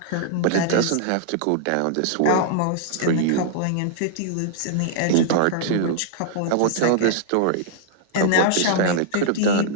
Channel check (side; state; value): both; different; correlation -0.01